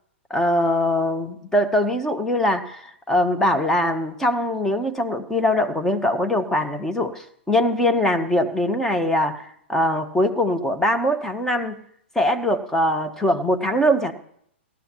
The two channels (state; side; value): normal; both; correlation 0.53